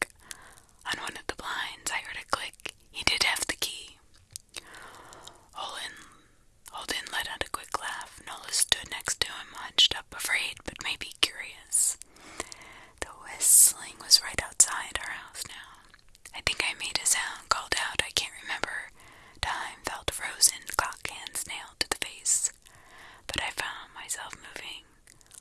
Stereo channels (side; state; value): both; identical; correlation 1.00